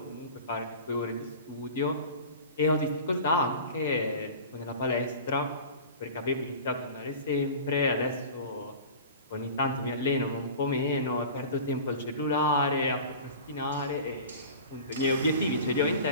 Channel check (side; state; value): both; inverted; correlation -0.37